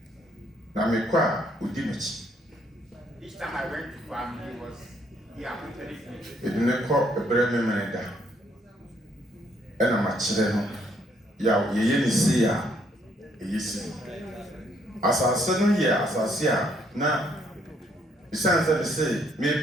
Now, me qua, Udimich. Each time I went to farm, he accompanied me. It didn't call a brave man. And I'm a children. Ya, ye see ya. Ye see. As I said, yeah, as I see ya. Now, besides that, say, me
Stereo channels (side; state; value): both; normal; correlation 0.69